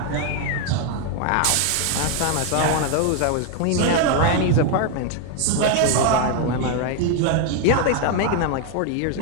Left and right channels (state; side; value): different; both; correlation 0.01